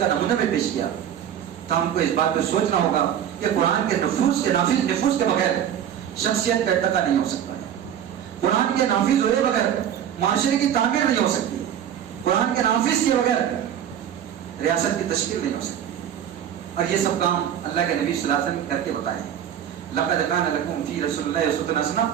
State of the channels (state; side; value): quieter; left; 9.6 dB